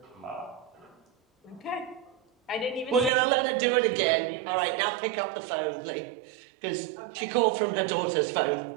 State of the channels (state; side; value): drops out; left; at 3.1 s